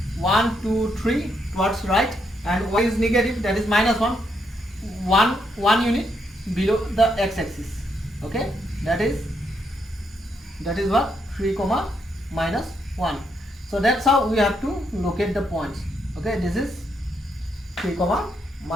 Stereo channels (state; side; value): normal; both; correlation 0.77